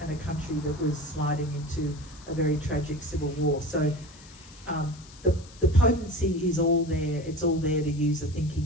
country that was sliding into a very tragic civil war. So the potency is all there. It's all there to use a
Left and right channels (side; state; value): left; noise; hiss, 21 dB below the sound